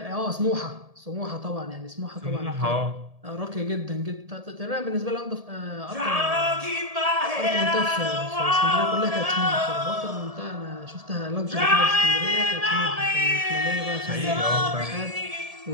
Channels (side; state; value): left; late; 1.7 ms